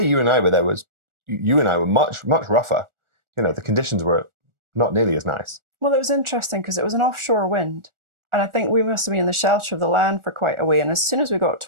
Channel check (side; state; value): left; late; 1.4 ms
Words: you and I were there you and I were much, much rougher. The conditions were not nearly as nice. Well, it was interesting because it was an offshore wind. And I think we must have been in the shelter of the land for quite a way. And as soon as we got